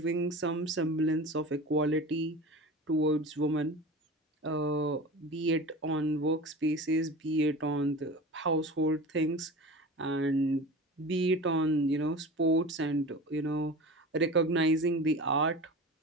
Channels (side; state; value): both; normal; correlation 0.33